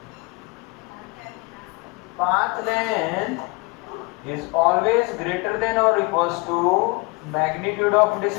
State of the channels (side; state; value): right; quieter; 26.7 dB